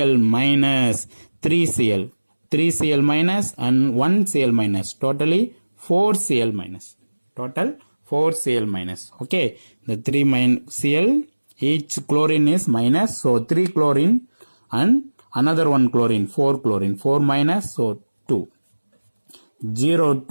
minus, 3 Cl minus and 1 Cl minus, totally 4 Cl minus, total 4 Cl minus. Okay, the 3 Cl, each chlorine is minus, so 3 chlorine and another 1 chlorine, 4 chlorine, 4 minus, so 2, 0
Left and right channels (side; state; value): both; inverted; correlation -1.00